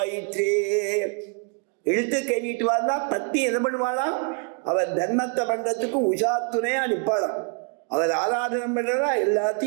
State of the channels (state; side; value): quieter; left; 38.2 dB